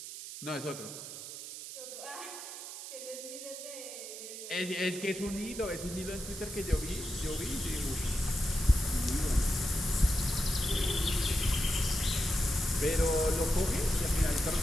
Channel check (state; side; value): noise; right; hiss, 10 dB below the sound